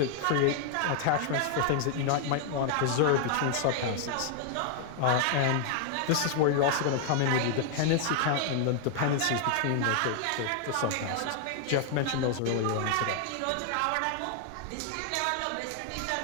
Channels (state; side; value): different; both; correlation 0.00